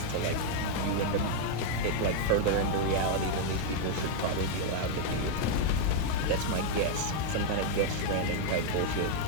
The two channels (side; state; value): both; different; correlation 0.00